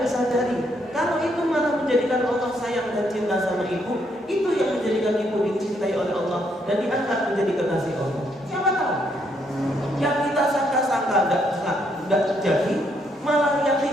sadari. Kalau itu malah menjadikan Allah sayang dan cinta sama ibu, itu yang menjadikan ibu dicintai oleh Allah dan diangkat menjadi kekasih Allah. Siapa tahu? Yang kita sangka-sangka tidak terjadi, malah yang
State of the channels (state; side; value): normal; both; correlation 0.73